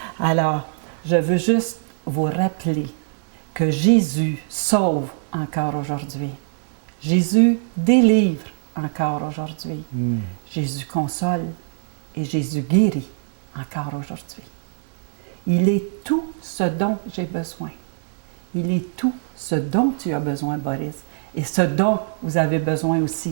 Alors, je veux juste vous rappeler que Jésus sauve encore aujourd'hui. Jésus délivre encore aujourd'hui. Jésus console et Jésus guérit encore aujourd'hui. Il est tout ce dont j'ai besoin. Il est tout ce dont tu as besoin, Boris, et ce dont vous avez besoin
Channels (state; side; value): silent; left; 64 dB below the other